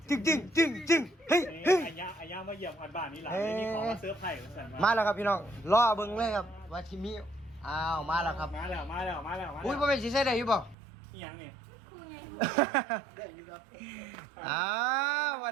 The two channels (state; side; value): drops out; left; at 10.8 s